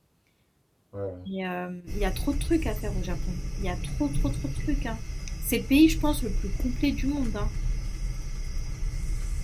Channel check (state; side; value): identical; both; correlation 1.00